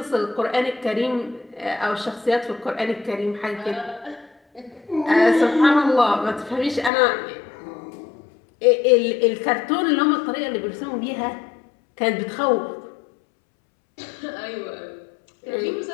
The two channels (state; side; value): drops out; right; at 6.9 s